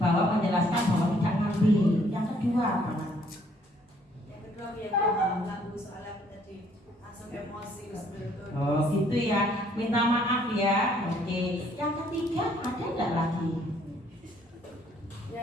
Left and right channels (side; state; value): both; normal; correlation 0.64